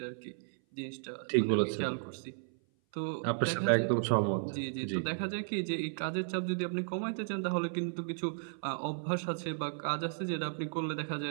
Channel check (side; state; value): left; silent; 55 dB below the other